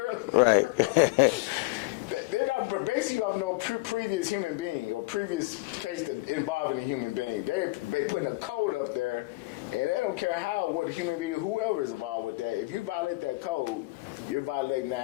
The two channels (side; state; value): right; quieter; 22.7 dB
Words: They're not basically, you have no previous human being or previous case that involving a human being. They putting a code up there, and they don't care what human being, whoever is involved with that. If you violate that code, you're violating the